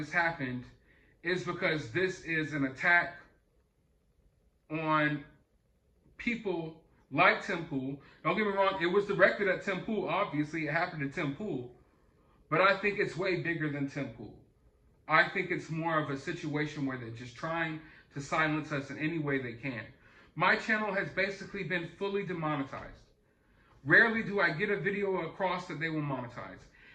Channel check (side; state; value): both; identical; correlation 1.00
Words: happened, is because this is an attack on people like Tim Pool. Don't get me wrong, it was directed at Tim Pool, obviously, it happened to Tim Pool, but I think it's way bigger than Tim Pool. I think it's more of a situation where they're just trying to silence us in any way they can. My channel has basically been fully demonetized. Rarely do I get a video across that they will monetize.